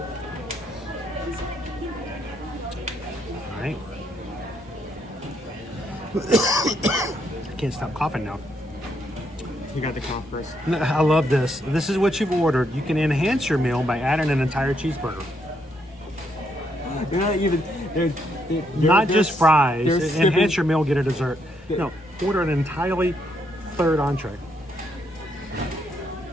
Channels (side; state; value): both; normal; correlation 0.76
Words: All right. I can't stop coughing now. You got the cough first. I love this. This is what you've ordered. You can enhance your meal by adding an entire cheeseburger. They're not even. They're not just fries. They're Enhance your meal, get a dessert. No, order an entirely third entree.